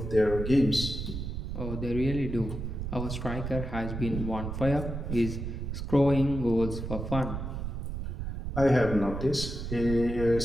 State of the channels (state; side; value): noise; right; rumble, 5 dB below the sound